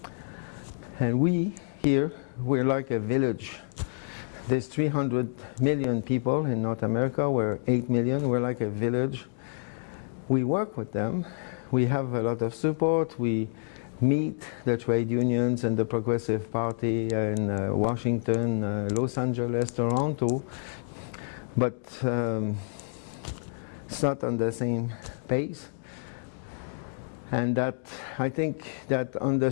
And we, here, we're like a village. There's 300 million people in North America, we're 8 million, we're like a village. We work with them, we have a lot of support, we meet the trade unions and the Progressive Party in Washington, Los Angeles, Toronto, but it's not on the same pace. And that, I think that on the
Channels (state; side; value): silent; right; digital silence